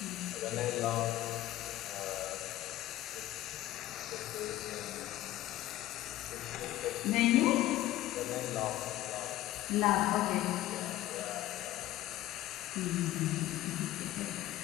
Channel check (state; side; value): quieter; right; 15.0 dB